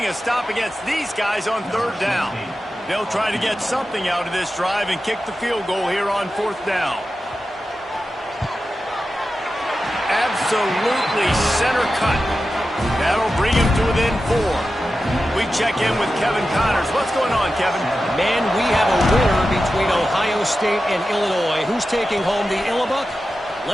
a stop against these guys on 3rd down. They'll try to get something out of this drive and kick the field goal here on 4th down. Absolutely center cut. That'll bring him to within 4. We check in with Kevin Connors. What's going on, Kevin? Man, we have a winner between Ohio State and Illinois. Who's taking home the Illibuck?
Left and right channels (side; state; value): both; normal; correlation 0.92